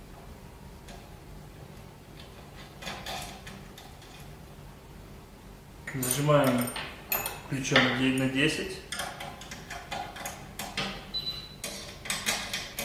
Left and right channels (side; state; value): both; identical; correlation 1.00